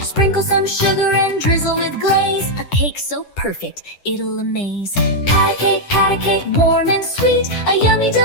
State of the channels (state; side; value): late; right; 10 ms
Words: Sprinkle some sugar and drizzle with glaze. A cake so perfect, it'll amaze. Pat a cake, warm and sweet. A yummy